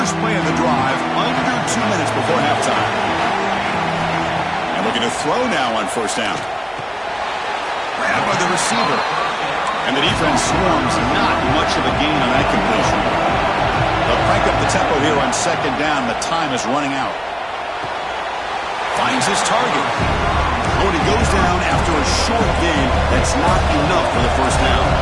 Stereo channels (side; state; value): both; identical; correlation 1.00